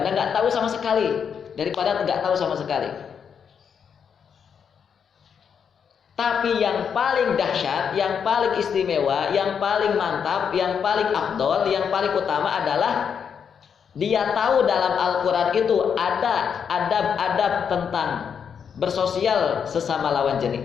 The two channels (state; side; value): quieter; right; 7.2 dB